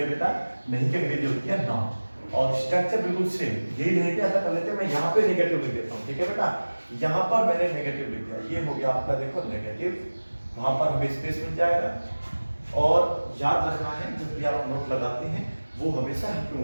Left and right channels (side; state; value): both; inverted; correlation -1.00